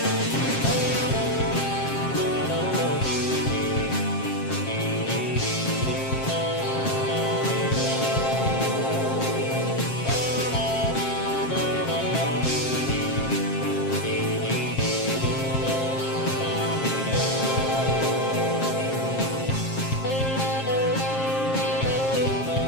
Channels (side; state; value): right; late; 7.5 ms